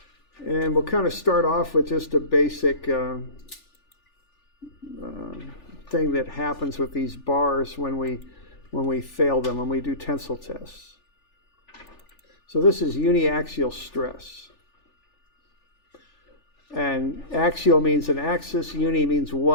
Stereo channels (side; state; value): right; late; 3.4 ms